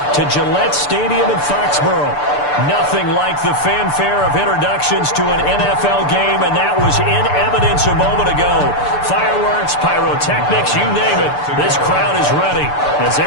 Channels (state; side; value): late; right; 6.8 ms